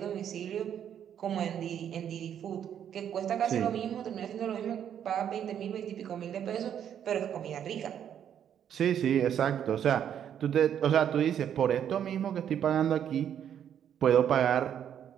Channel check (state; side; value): quieter; left; 9.3 dB